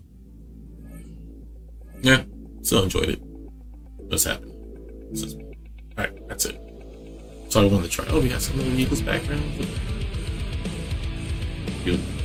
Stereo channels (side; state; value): both; identical; correlation 1.00